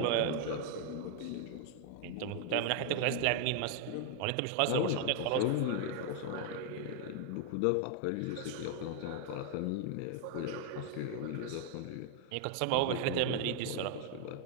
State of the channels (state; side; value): different; both; correlation 0.00